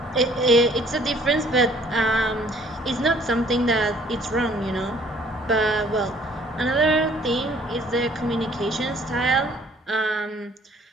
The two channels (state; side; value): normal; both; correlation 0.58